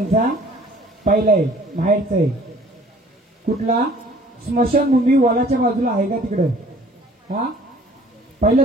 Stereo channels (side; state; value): both; normal; correlation 0.53